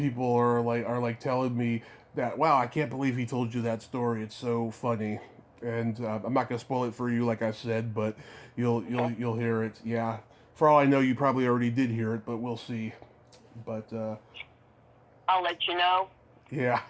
are like telling me that, wow, I can't believe he told you that story. It's so funny. And I'm not gonna spoil it for you, like I said, but you'll hear it. Yeah, for all I know, you probably already did hear it, but we'll see. But I'll let you know. Yeah.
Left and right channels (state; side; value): identical; both; correlation 1.00